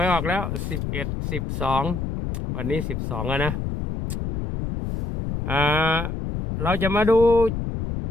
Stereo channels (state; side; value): noise; left; rumble, 4 dB below the sound